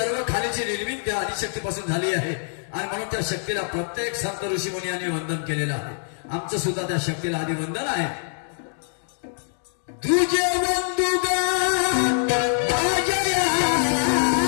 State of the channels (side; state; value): right; silent; digital silence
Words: खालीची निर्मिती त्या आदिशक्तीपासून झाली आहे आणि म्हणून त्या शक्तीला प्रत्येक संत ऋषी मुनी यांनी वंदन केलेलं आहे. आमचं सुद्धा त्या शक्तीला आधी वंदन आहे. तुझे वंदुगा माझ्या